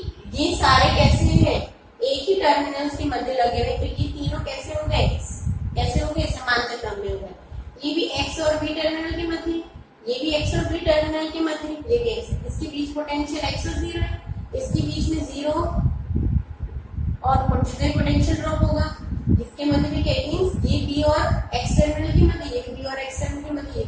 ये सारे कैसे हैं, एक ही टर्मिनल्स के मध्य लगे हुए, तो ये तीनों कैसे हो गए, कैसे हो गए, समांतर क्रम में हो गए। ये भी एक्स और बी टर्मिनल के मध्य, ये भी एक्स और बी टर्मिनल के मध्य, ये भी एक्स, इसके बीच पोटेंशियल एक्स और जीरो है, इसके बीच में जीरो और पोटेंशियल ड्रॉप होगा, इसके मध्य में क्या मींस ये बी और एक्स टर्मिनल के मध्य, ये बी और एक्स टर्मिनल के मध्य, ये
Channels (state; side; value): identical; both; correlation 1.00